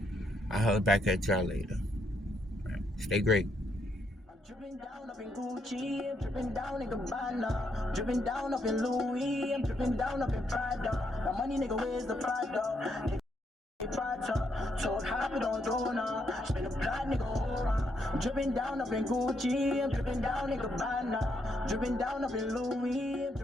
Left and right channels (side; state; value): both; normal; correlation 0.76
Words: I'll holler back at y'all later. Right. Stay great. Dripping down up in Gucci, I'm dripping down in Gabbana, dripping down up in Louis, I'm dripping down up in Prada. My money, nigga, where's the Prada? Told hop it on Dona, spin a plot, nigga, aura. I'm dripping down up in Gucci, I'm dripping down in Gabbana, dripping down up in Louis, I'm